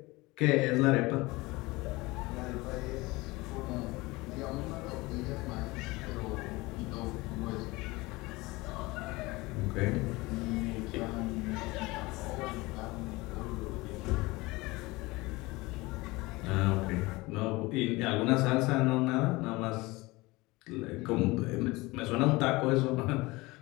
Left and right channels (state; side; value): quieter; right; 22.1 dB